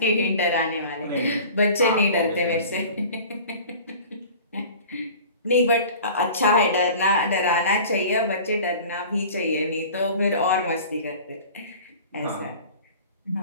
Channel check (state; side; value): inverted; both; correlation -0.42